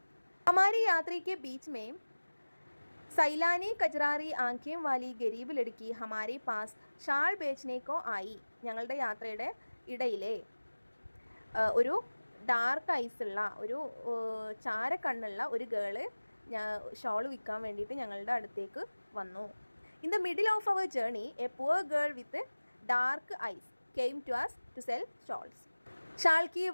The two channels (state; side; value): inverted; both; correlation -1.00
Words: हमारी यात्री के बीच में സൈലാനി കജറാറി ആംഖേം വാലി ഗരീബ് ലടുക്കി ഹമാരെ പാസ് ഷാൾ ബേച്ച്നേക്കോ ആയി. ഞങ്ങളുടെ യാത്രയുടെ ഇടയിലെ ഒരു ഡാർക്ക് ഐസുള്ള ഒരു ചാരക്കണ്ണുള്ള ഒരു ഗേള് ഷോൾ വിൽക്കാൻ വേണ്ടിയിട്ട് ഞങ്ങളുടെ അടുത്തേക്ക് വന്നു. In the middle of our journey a poor girl with dark eyes came to us to sell shawls. ഷാൾ की